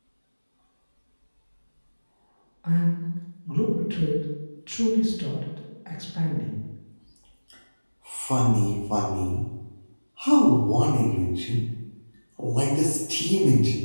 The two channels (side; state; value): both; inverted; correlation -1.00